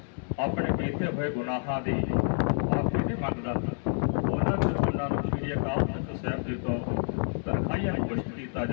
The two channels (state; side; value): silent; right; 59 dB below the other